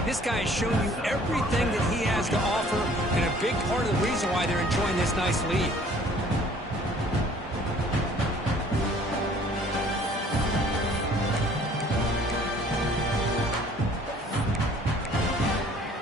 this guy has shown you everything that he has to offer, and a big part of the reason why they're enjoying this nice lead.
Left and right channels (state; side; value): normal; both; correlation 0.55